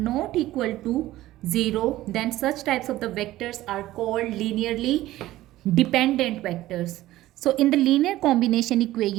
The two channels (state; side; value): quieter; left; 15.7 dB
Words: equal to 0, then such types of the vectors are called linearly dependent vectors. So in the linear combination